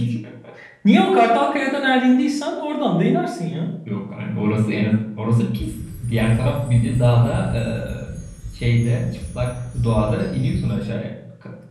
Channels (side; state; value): both; identical; correlation 1.00